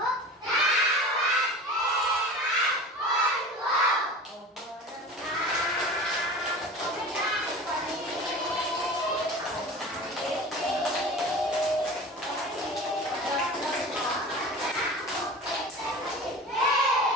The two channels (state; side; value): normal; both; correlation 0.36